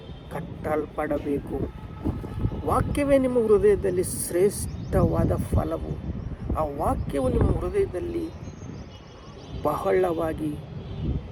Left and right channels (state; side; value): identical; both; correlation 1.00